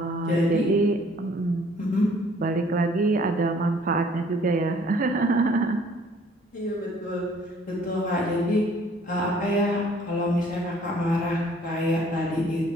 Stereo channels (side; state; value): both; normal; correlation 0.58